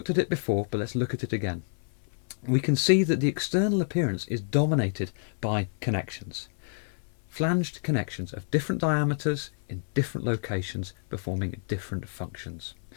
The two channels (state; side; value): silent; right; 58 dB below the other